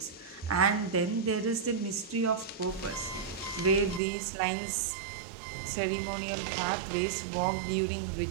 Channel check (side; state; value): left; drops out; at 4.0 s